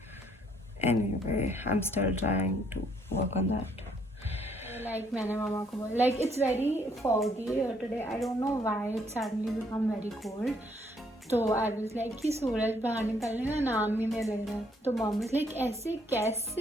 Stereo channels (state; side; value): normal; both; correlation 0.68